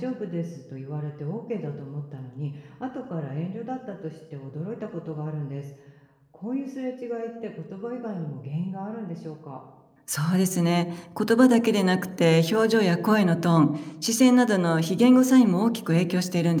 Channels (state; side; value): identical; both; correlation 1.00